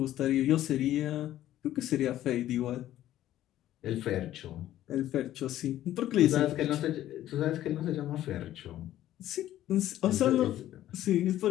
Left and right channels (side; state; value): right; quieter; 13.2 dB